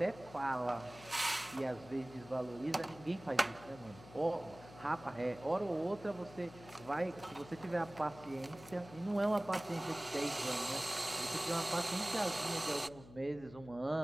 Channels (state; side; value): noise; left; hum, 18 dB below the sound